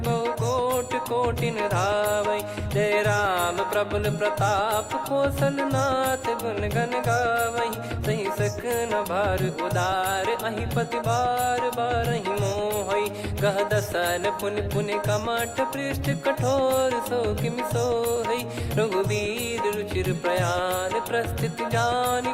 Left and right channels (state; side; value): identical; both; correlation 1.00